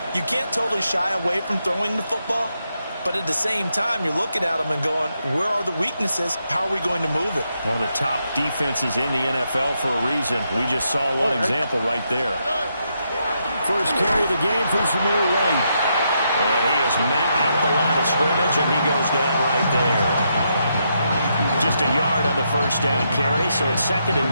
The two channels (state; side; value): inverted; both; correlation -0.80